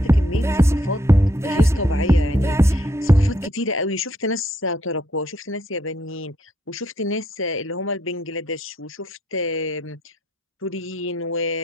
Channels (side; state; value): both; normal; correlation 0.73